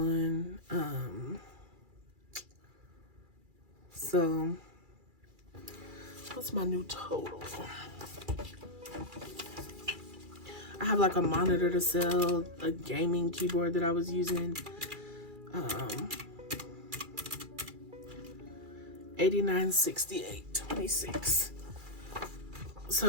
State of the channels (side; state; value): left; late; 2.4 ms